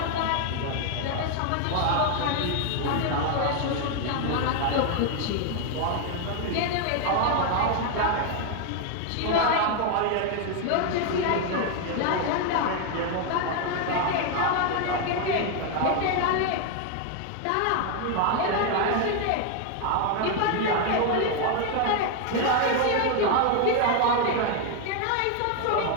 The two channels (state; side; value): different; both; correlation 0.01